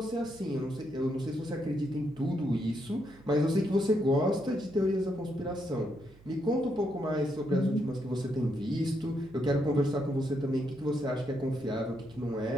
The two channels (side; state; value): right; noise; hum, 24 dB below the sound